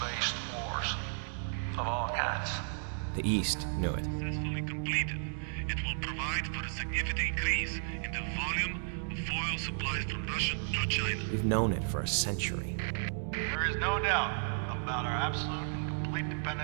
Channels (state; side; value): silent; left; digital silence